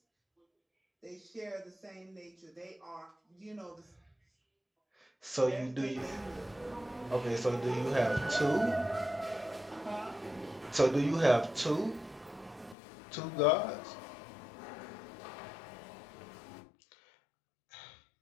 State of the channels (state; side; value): drops out; right; at 12.8 s